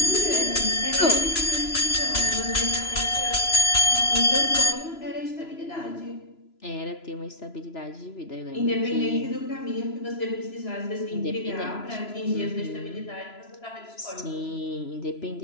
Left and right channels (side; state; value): right; late; 3.0 ms